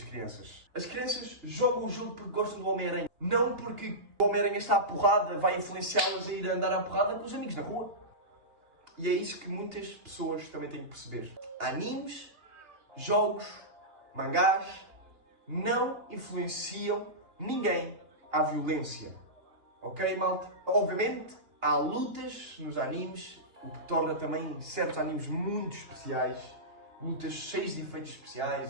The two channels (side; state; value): left; late; 2.9 ms